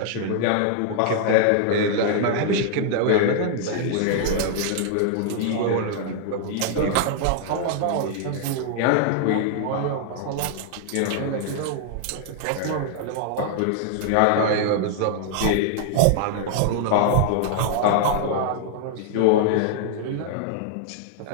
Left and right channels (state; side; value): different; both; correlation -0.01